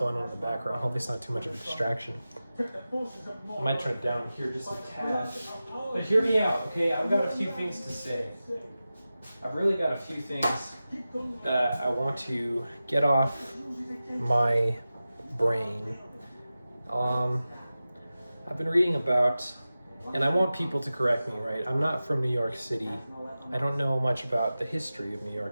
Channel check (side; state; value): both; inverted; correlation -0.95